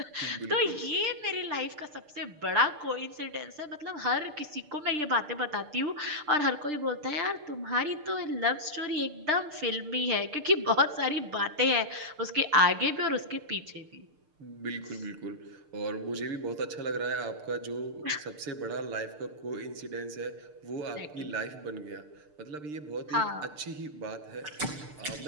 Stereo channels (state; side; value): late; left; 6.7 ms